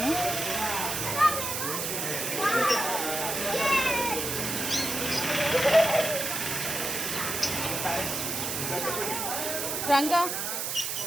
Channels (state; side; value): noise; right; hiss, 2 dB below the sound